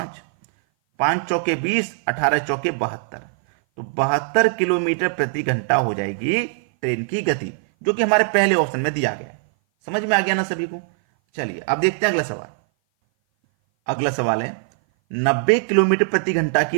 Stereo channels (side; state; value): left; silent; 58 dB below the other